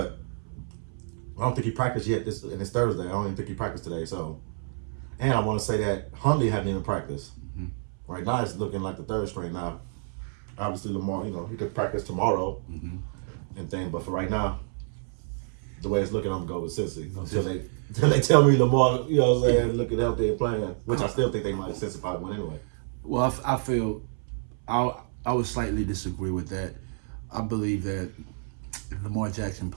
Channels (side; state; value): left; silent; 59 dB below the other